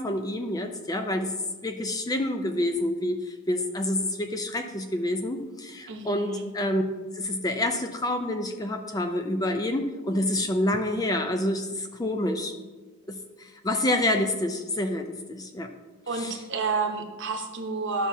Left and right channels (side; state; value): both; normal; correlation 0.39